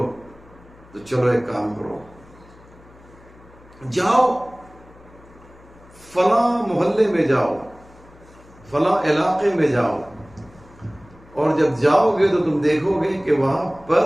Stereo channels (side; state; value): left; noise; hum, 25 dB below the sound